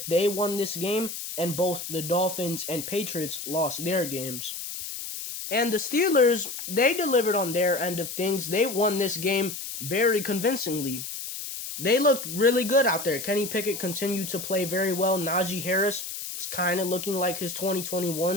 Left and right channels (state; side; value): noise; left; hiss, 7 dB below the sound